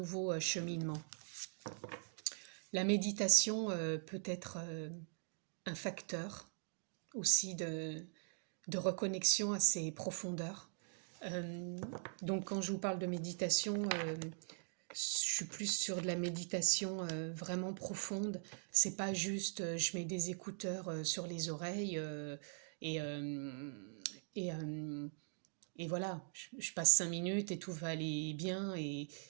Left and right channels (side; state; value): left; silent; digital silence